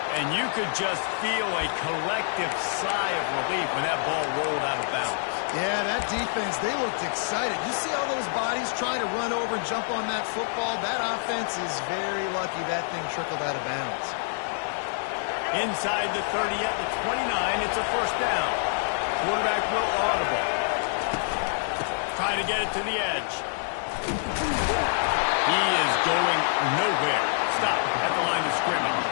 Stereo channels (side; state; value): right; silent; digital silence